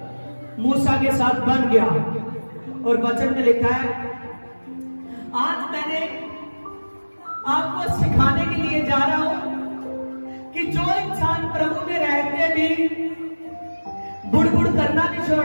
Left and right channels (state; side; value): inverted; both; correlation -1.00